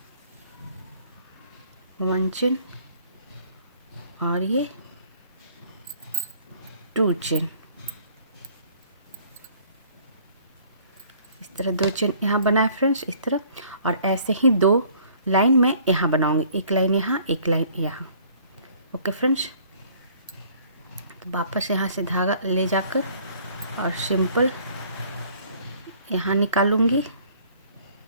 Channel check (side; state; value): both; inverted; correlation -0.57